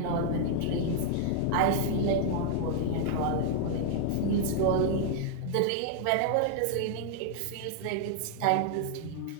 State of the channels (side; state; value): both; different; correlation 0.00